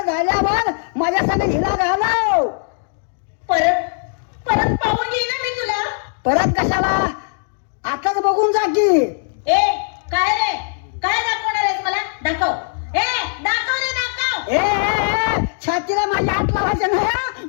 झाल्यावर माझ्या संग हिला घालव परत परत पाहून येईन ना मी तुला परत कशाला आताच बघून जा की ए काय रे काय दाखवणार आहेस मला दाखव ए दाखव रे दाखव ए छातीला माझ्या हात लावायचं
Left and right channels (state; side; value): silent; right; digital silence